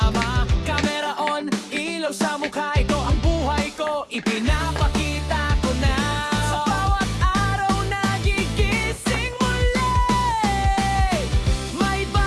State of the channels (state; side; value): identical; both; correlation 1.00